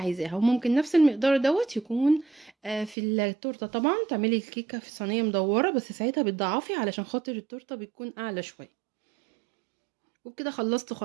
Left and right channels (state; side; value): drops out; left; at 3.0 s